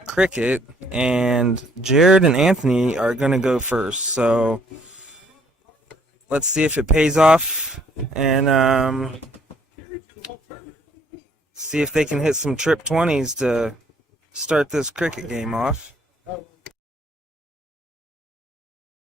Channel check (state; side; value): normal; both; correlation 0.64